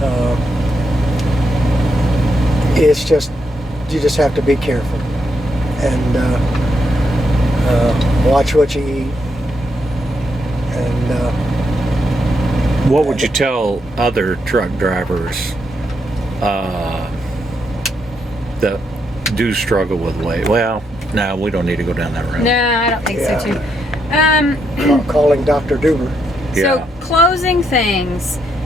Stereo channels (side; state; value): both; normal; correlation 0.79